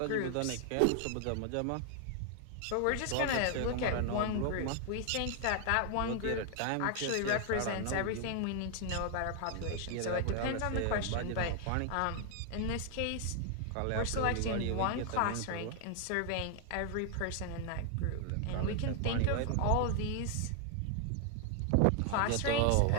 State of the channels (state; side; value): different; both; correlation 0.00